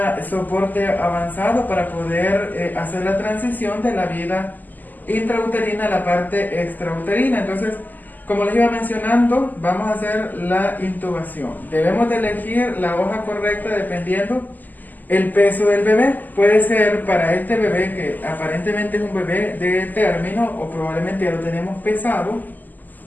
soporte avanzado para poder hacer la transición de la vida intrauterina a la parte extrauterina. Entonces, como les iba mencionando, vamos a hacer la intubación. Debemos de elegir la hoja correcta dependiendo el peso del bebé. Puede ser para este bebé que aparentemente es un bebé de término o probablemente ya lo tenemos pesado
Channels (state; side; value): late; right; 0.085 ms